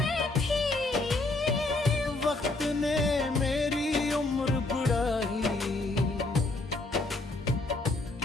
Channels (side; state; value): right; quieter; 3.0 dB